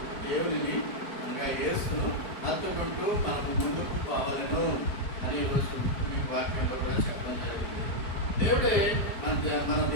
దేవునిని అనగా యేసును హత్తుకుంటూ మనము ముందుకు పోవాలను అని రోజు మీకు వాక్యంలో కూడా చెప్పడం జరిగింది. దేవుడే మన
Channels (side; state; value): right; late; 4.6 ms